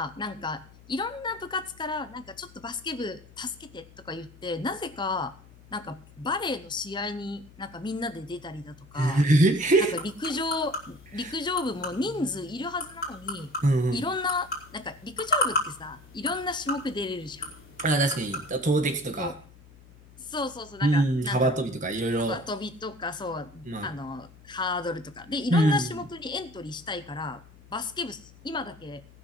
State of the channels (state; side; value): noise; left; hum, 22 dB below the sound